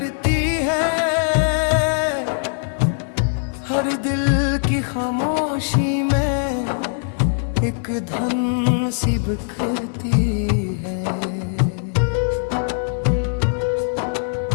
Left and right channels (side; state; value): right; silent; 57 dB below the other